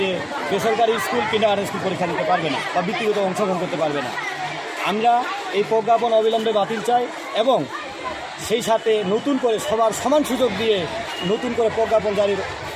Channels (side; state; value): both; identical; correlation 1.00